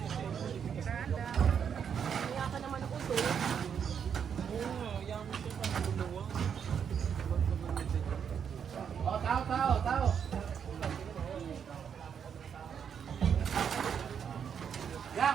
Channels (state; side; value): quieter; left; 7.6 dB